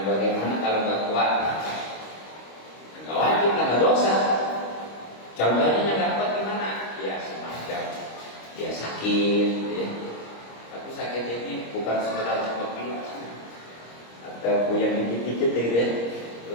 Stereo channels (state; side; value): late; right; 26 ms